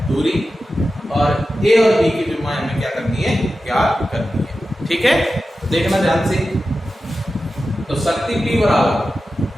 दूरी, और a और b की विमा हमें क्या करनी है, ज्ञात करनी है। ठीक है, देखना ध्यान से। तो शक्ति P बराबर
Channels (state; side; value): normal; both; correlation 0.93